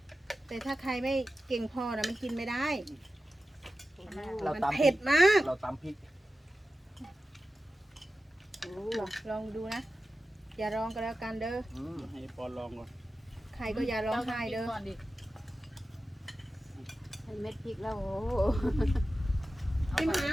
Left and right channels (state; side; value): normal; both; correlation 0.93